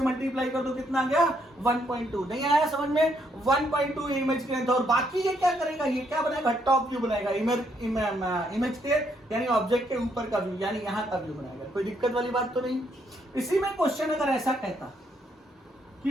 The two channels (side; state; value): both; normal; correlation 0.73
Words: मल्टीप्लाई कर दो, कितना आ गया? 1.2। नहीं आया समझ में? 1.2 इमेज की लेंथ। और बाकी ये क्या करेगा? ये क्या बनाएगा? टॉप व्यू बनाएगा, इमेज के यानी ऑब्जेक्ट के ऊपर का व्यू, यानी यहाँ का व्यू बनाएगा। कोई दिक्कत वाली बात तो नहीं। इसी में क्वेश्चन अगर ऐसा कहता